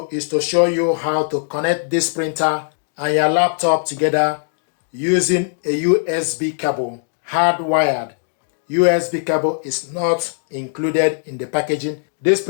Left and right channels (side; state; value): right; silent; digital silence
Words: is to show you how to connect this printer and your laptop together using a USB cable, hardwired. USB cable is not included in the packaging. This